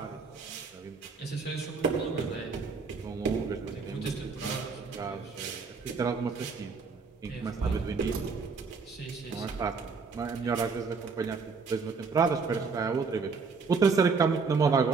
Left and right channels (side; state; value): left; quieter; 4.9 dB